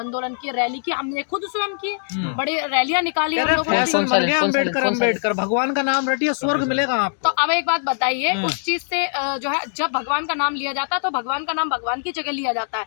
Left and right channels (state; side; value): silent; right; digital silence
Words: किए, रैली की, हमने खुद स्वयं किए, बड़ी रैलियां निकाली। फैशन बन गया अम्बेडकर भगवान का नाम रटिए स्वर्ग मिलेगा आपको। तो अब एक बात बताइए, उस चीज से जो है जब भगवान का नाम लिया जाता है तो भगवान का नाम भगवान की जगह लिया जाता